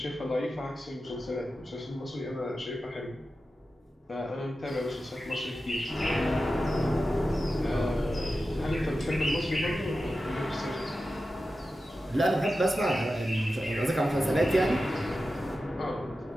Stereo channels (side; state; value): both; normal; correlation 0.92